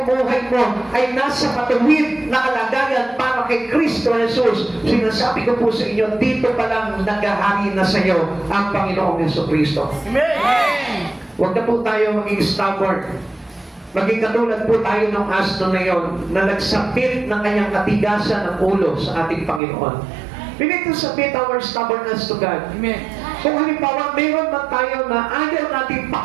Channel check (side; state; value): left; drops out; at 19.6 s